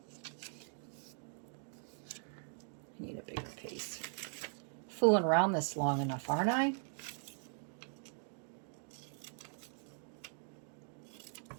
I need a bigger piece. Fooling around this long enough, aren't I?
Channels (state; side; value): silent; left; 51 dB below the other